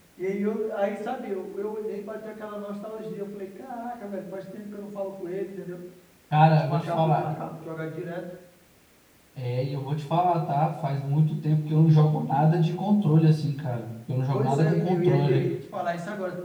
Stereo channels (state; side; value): identical; both; correlation 1.00